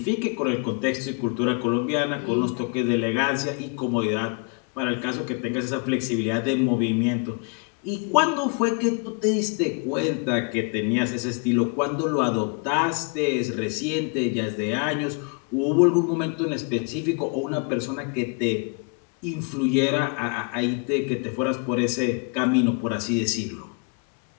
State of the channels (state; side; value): quieter; right; 36.4 dB